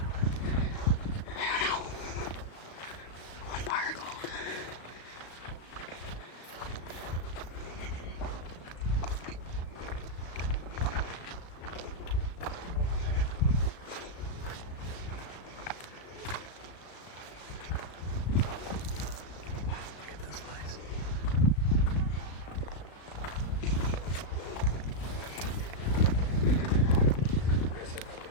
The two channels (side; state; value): right; late; 36 ms